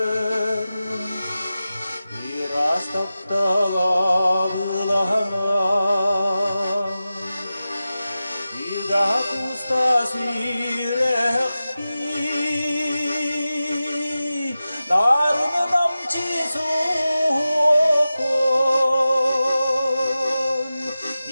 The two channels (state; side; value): inverted; both; correlation -0.94